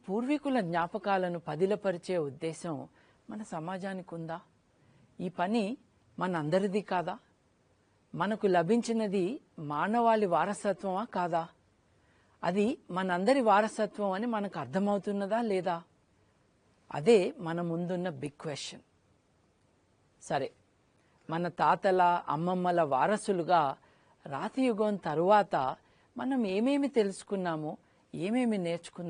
పూర్వీకుల జ్ఞాపకాలను పదిలపరిచే ఉద్దేశం మన సమాజానికి ఉందా? ఈ పని మనందరిది కాదా? మనకు లభించినది మానవాళి వారసత్వమా కాదా? అది మనందరి వారసత్వం అని మనకు అర్థమవుతున్నదా లేదా? అదే మన ముందున్న బిగ్ క్వశ్చన్. సరే, మన తాతల అమ్మమ్మల వారసులుగా రాతియుగం తరువాత మనం ఏమేమి తెలుసుకున్నామో, ఏమేమి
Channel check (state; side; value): identical; both; correlation 1.00